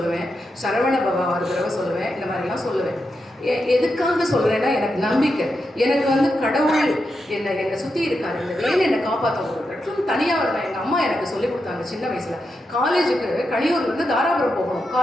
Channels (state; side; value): normal; both; correlation 0.86